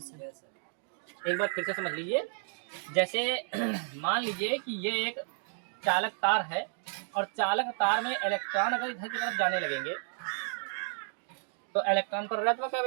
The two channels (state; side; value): silent; left; digital silence